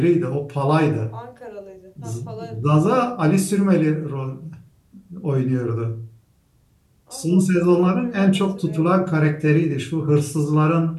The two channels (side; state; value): both; identical; correlation 1.00